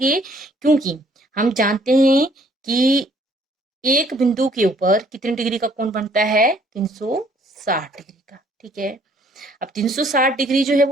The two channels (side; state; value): both; normal; correlation 0.61